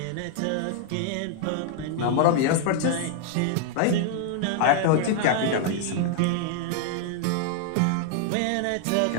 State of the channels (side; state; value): both; different; correlation 0.00